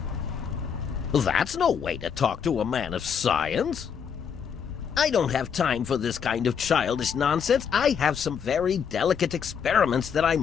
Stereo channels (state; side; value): quieter; right; 7.2 dB